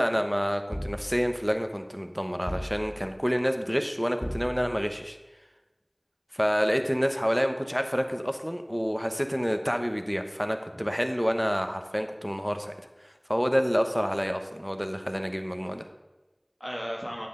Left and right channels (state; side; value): identical; both; correlation 1.00